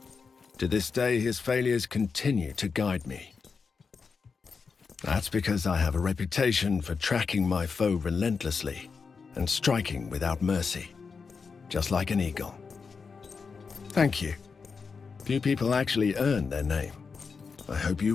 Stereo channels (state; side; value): quieter; right; 5.2 dB